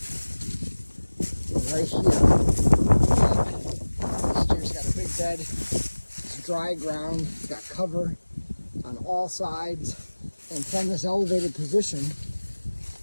And right here, this deer's got a big bed. It's dry ground. It's got cover on all sides. And from this elevated position,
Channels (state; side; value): inverted; both; correlation -1.00